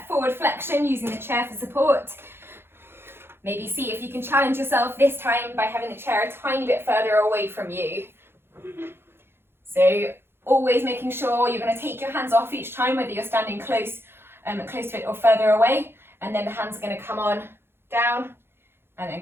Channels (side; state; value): left; late; 0.11 ms